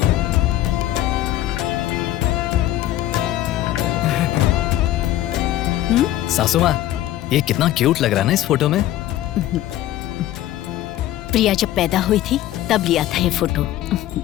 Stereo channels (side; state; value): right; quieter; 13.8 dB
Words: सासू माँ, ये कितना क्यूट लग रहा है ना इस फोटो में। प्रिया जब पैदा हुई थी तब लिया था ये फोटो।